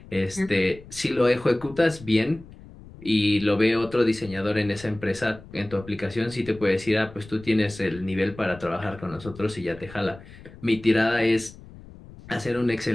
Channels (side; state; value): left; noise; rumble, 19 dB below the sound